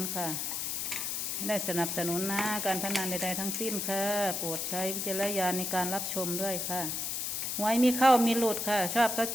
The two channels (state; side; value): noise; left; hiss, 2 dB below the sound